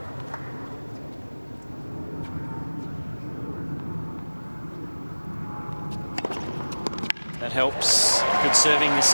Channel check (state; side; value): inverted; both; correlation -1.00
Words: That helps. Good serving this